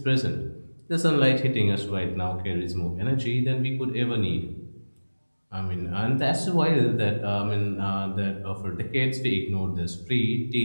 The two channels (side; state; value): both; inverted; correlation -1.00